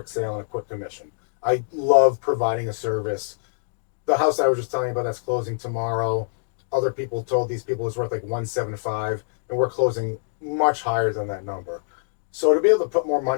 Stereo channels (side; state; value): right; silent; digital silence